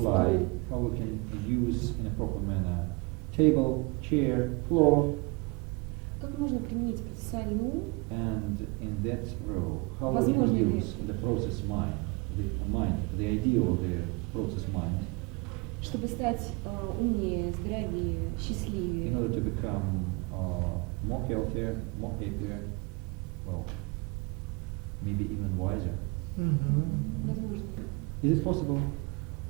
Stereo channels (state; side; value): quieter; left; 28.5 dB